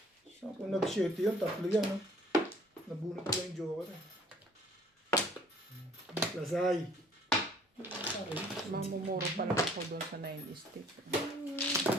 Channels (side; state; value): both; normal; correlation 0.57